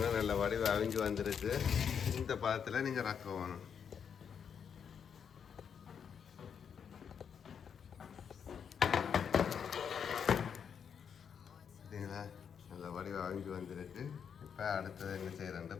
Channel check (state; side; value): quieter; right; 7.3 dB